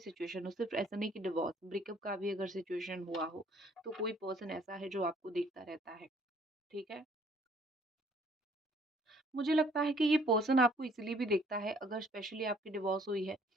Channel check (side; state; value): both; normal; correlation 0.60